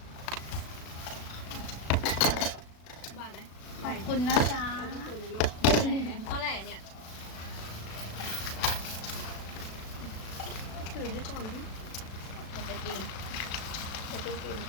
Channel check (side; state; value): right; late; 36 ms